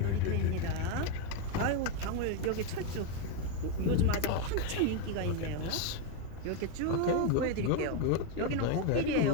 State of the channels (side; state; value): both; different; correlation 0.02